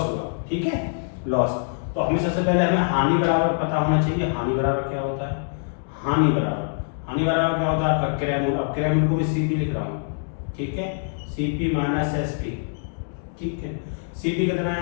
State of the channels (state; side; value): silent; right; digital silence